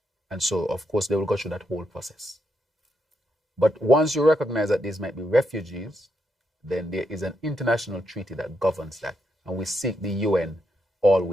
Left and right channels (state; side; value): normal; both; correlation 0.81